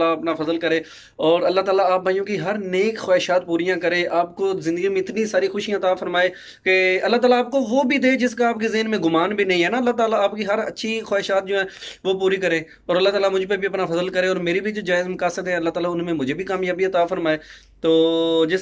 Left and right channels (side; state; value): both; identical; correlation 1.00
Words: अपना फजल करे और अल्लाह ताला आप भाइयों की हर नेक ख्वाहिशात पूरियां करे, आपको ज़िंदगी में इतनी सारी खुशियां अता फरमाए कि अल्लाह ताला आपको वो भी दे जिसका आपके ज़हन में गुमान भी नहीं है ना। अल्लाह ताला आपकी हर अच्छी ख्वाहिशात जो है वो पूरी करे और अल्लाह ताला मुझ पे भी अपना फजल करे और मेरी भी जो जायज़ मकासद है अल्लाह ताला उनमें मुझे भी कामयाबी अता फरमाए। तो